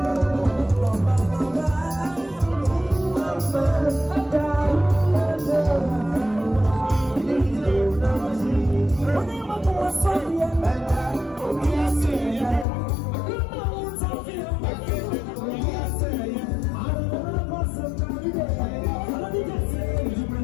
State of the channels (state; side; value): drops out; right; at 12.7 s